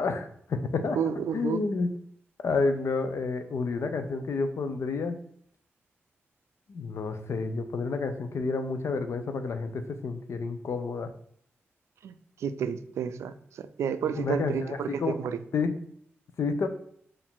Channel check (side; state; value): both; normal; correlation 0.71